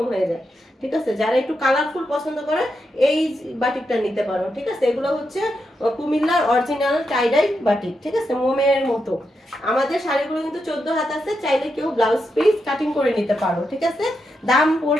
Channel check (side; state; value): both; normal; correlation 0.85